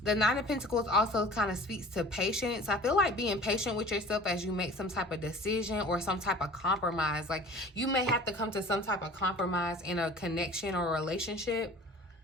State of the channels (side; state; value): both; normal; correlation 0.43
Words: the Nine of Pentacles also kind of speaks to patience. I feel like being patient with yourself as you make some type of decision or some type of compromise. Like you may have to come to some type of compromise in a connection or relationship